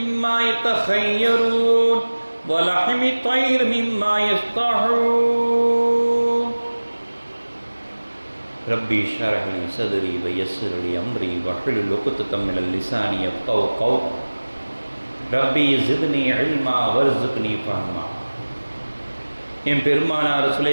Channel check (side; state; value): both; inverted; correlation -1.00